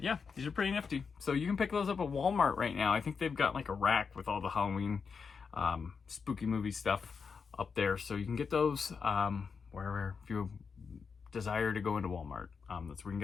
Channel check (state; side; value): quieter; right; 5.6 dB